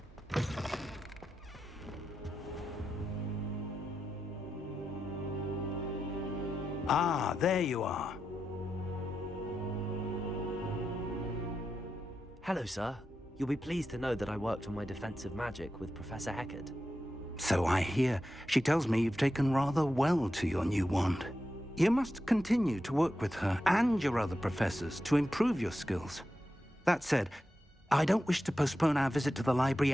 Ah, there you are. Hello, sir. You'll be pleased to know that I worked on my defensive magic with Professor Heckard. So I hear. She tells me you've taken rather well to your new wand. You must continue to work with her and your other professors to improve your skills. That said, I don't wish to postpone our visit to the library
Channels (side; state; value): both; normal; correlation 0.88